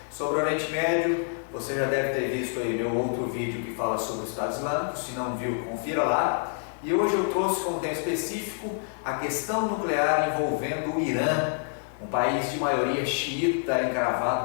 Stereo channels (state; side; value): silent; right; 60 dB below the other